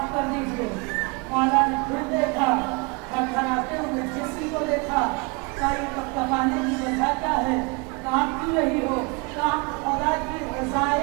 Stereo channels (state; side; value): quieter; left; 29.7 dB